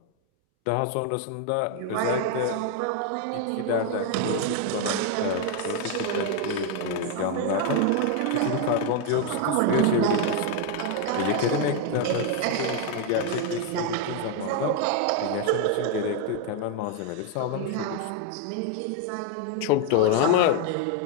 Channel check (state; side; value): different; both; correlation 0.01